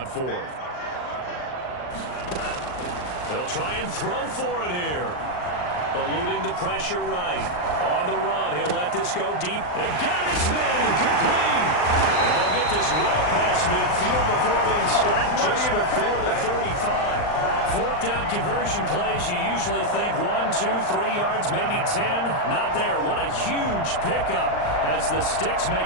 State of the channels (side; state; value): right; late; 39 ms